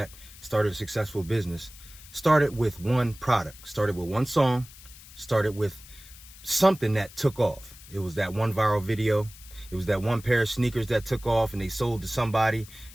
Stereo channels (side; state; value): left; noise; hiss, 19 dB below the sound